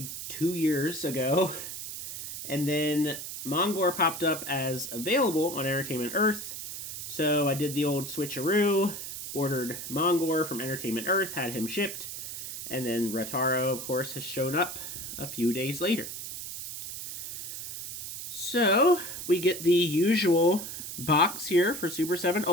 2 years ago. And then Mongor popped up as available on Entertainment Earth. So I did the old switcheroo, ordered Mongor from Entertainment Earth, had him shipped, and then Ratar-O, of course, has shown up a few days later. So we get the usual box here for Super7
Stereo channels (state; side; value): noise; right; hiss, 8 dB below the sound